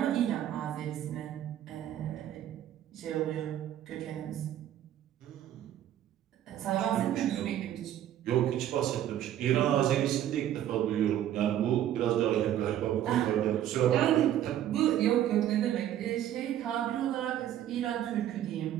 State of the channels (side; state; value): left; quieter; 11.6 dB